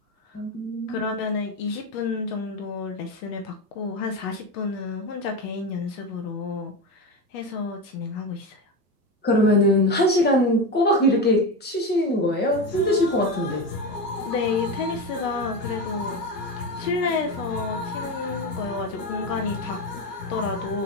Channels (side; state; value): both; normal; correlation 0.18